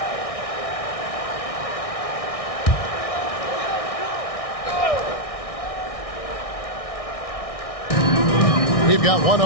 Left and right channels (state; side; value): late; right; 1.6 ms